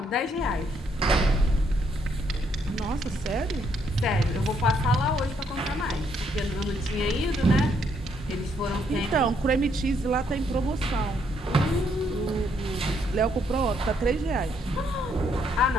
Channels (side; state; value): both; normal; correlation 0.72